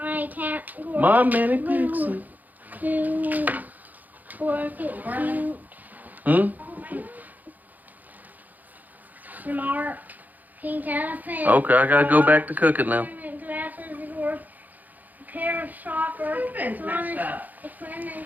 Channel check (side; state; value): left; late; 0.082 ms